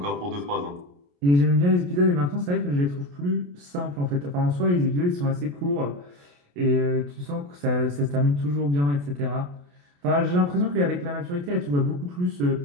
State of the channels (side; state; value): left; late; 28 ms